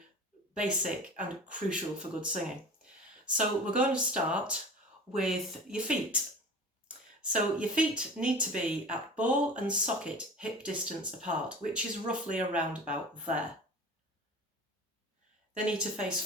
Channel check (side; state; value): both; normal; correlation 0.37